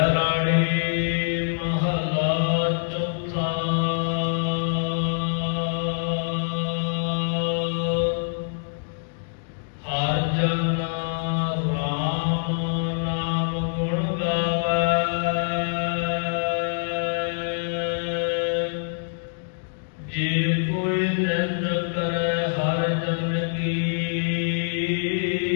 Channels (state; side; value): silent; right; digital silence